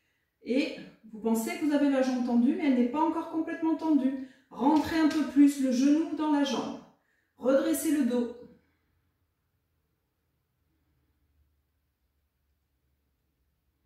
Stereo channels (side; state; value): both; identical; correlation 1.00